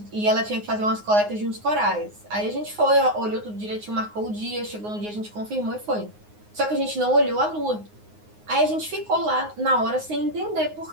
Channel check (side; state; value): left; late; 9.6 ms